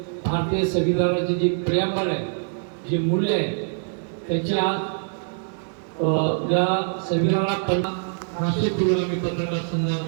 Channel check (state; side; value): silent; left; digital silence